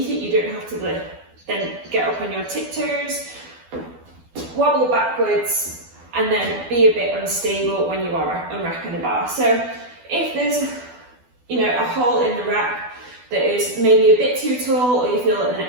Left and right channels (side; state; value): left; late; 12 ms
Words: it, you don't have to then get up on your tiptoes, wobble backwards, and then be a bit unstable when you are unracking the bar. So if there's a hole in the rack that is maybe a bit too tall, or you feel that the